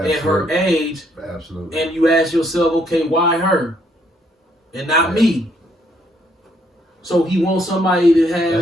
her age. Absolutely. And you ask yourself, okay, why her, and not me? So he wants somebody to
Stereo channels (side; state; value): both; normal; correlation 0.70